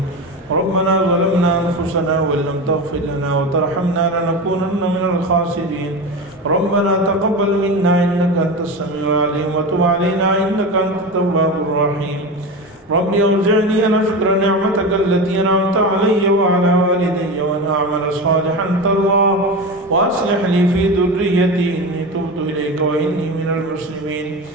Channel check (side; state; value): both; normal; correlation 0.24